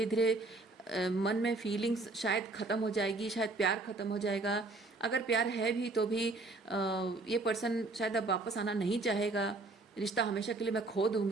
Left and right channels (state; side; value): quieter; left; 3.2 dB